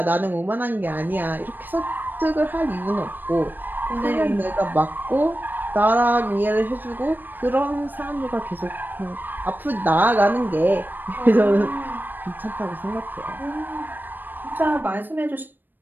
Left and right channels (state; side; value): late; left; 0.092 ms